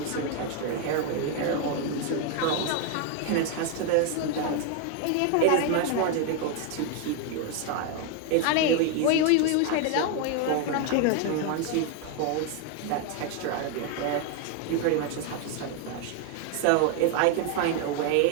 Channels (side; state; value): both; different; correlation 0.01